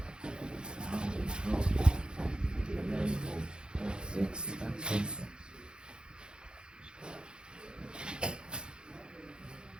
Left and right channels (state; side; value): late; left; 0.049 ms